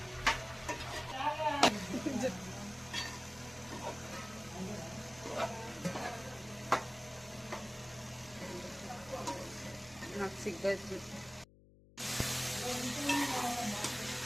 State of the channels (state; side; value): noise; left; hum, 23 dB below the sound